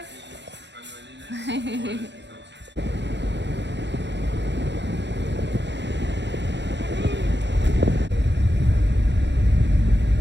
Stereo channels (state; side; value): late; left; 0.52 ms